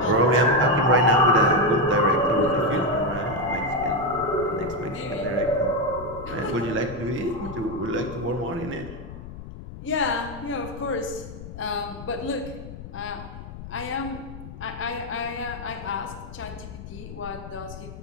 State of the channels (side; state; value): left; noise; rumble, 12 dB below the sound